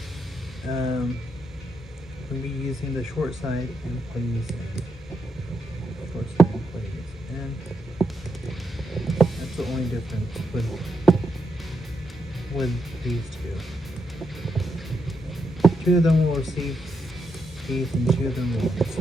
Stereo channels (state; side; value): normal; both; correlation 0.82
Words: using the short side and putting these in. Short side and putting these in. That's the only difference with these two. Two of them will receive these and two of them will